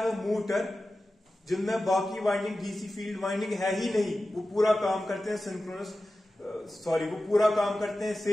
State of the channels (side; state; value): both; normal; correlation 0.94